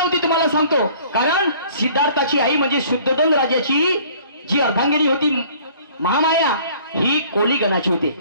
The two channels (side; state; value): both; inverted; correlation -0.53